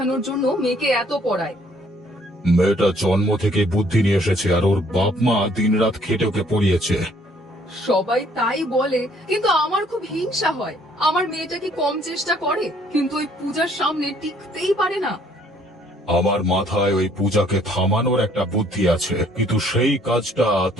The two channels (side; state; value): both; normal; correlation 0.62